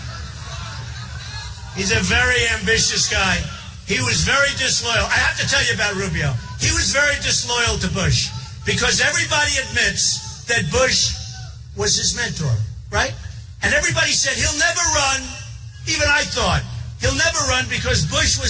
He's a very ambitious guy. He was very disloyal. I have to tell you about Rubio. He was very disloyal to Bush because everybody admits that Bush was his mentor, right? And everybody said he'll never run. Even I thought he'll never run because Bush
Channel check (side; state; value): both; identical; correlation 1.00